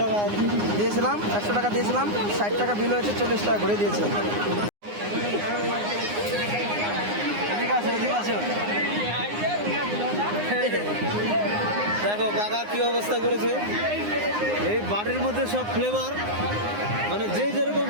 টাকা দিয়েছিলাম, 100 টাকা দিয়েছিলাম, 60 টাকা বিল হয়েছে, 40 টাকা ঘুরিয়ে দিয়েছে। দেখো কাকা কি অবস্থা করেছে, এই বাড়ির মধ্যে সব ফ্লেভার, মানে যে যেরকম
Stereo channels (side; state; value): left; late; 9.7 ms